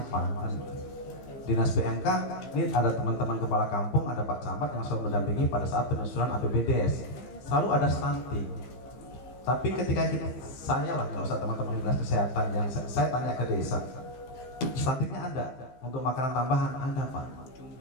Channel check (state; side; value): late; right; 16 ms